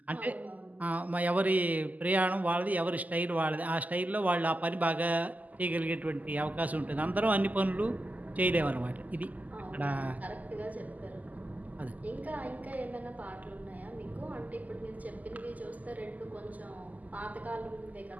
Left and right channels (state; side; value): late; left; 0.079 ms